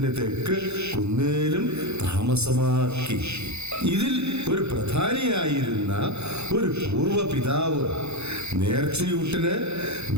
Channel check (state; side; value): late; left; 0.81 ms